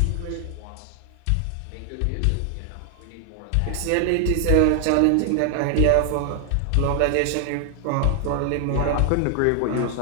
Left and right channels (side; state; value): both; different; correlation 0.00